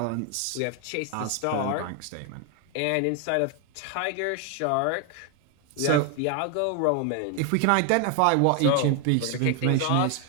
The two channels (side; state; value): both; different; correlation 0.01